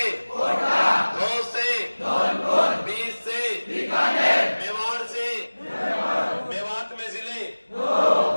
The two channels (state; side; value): inverted; both; correlation -1.00